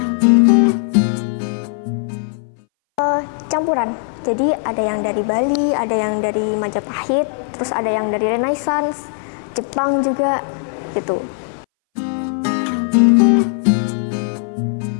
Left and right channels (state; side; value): silent; right; 62 dB below the other